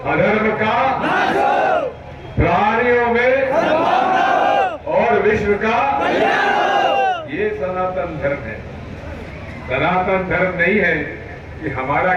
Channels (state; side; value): identical; both; correlation 1.00